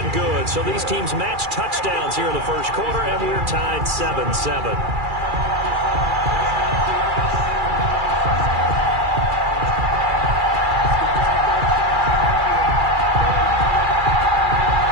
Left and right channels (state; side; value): late; left; 2.4 ms